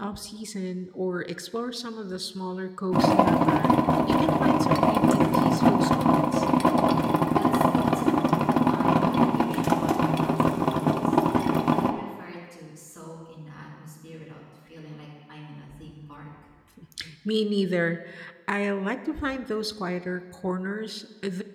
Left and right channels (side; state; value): both; identical; correlation 1.00